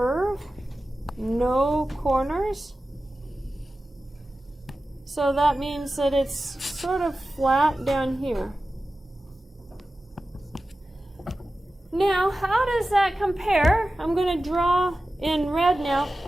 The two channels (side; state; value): both; normal; correlation 0.94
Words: No corners. So that means that it's sort of flat down here. Now, how does that compare? I'm going to draw in red now